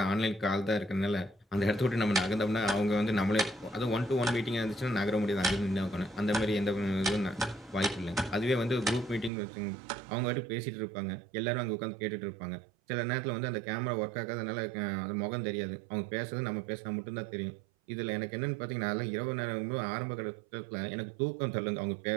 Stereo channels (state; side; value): drops out; left; at 9.3 s